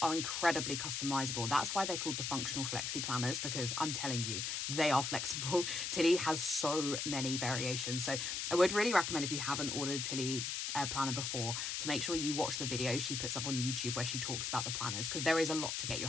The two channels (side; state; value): left; noise; hiss, 2 dB below the sound